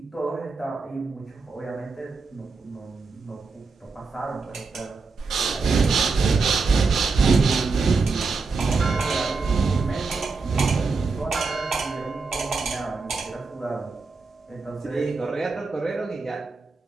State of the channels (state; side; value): quieter; left; 4.3 dB